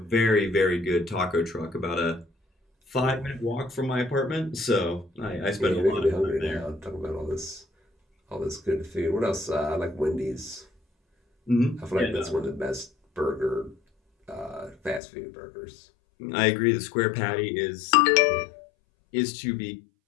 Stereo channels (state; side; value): drops out; right; at 15.0 s